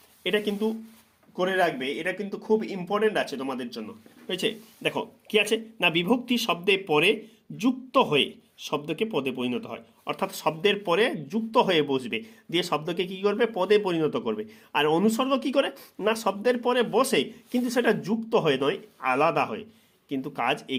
এটা কিন্তু করে রাখবে, এটা কিন্তু খুব ইম্পর্টেন্ট আছে তোমাদের জন্য, হয়েছে? দেখো কি আছে না, বিভক্তি শব্দে পরে যুক্ত হয়ে শব্দকে পদে পরিণত হয়, অর্থাৎ শব্দের পরে যুক্ত হয়ে বসবে, দিয়ে শব্দকে কি করবে? পদে পরিণত করবে। আর অনুসর্গ কি করে না, শব্দের পরে বসে, কিন্তু সেটা যুক্ত হয়ে নয়, আলাদা হয়, কিন্তু কাজ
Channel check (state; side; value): identical; both; correlation 1.00